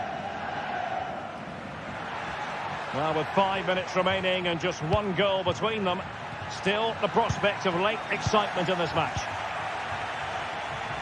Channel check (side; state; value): both; identical; correlation 1.00